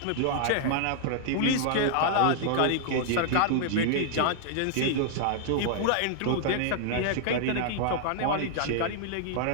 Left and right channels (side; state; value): both; different; correlation -0.01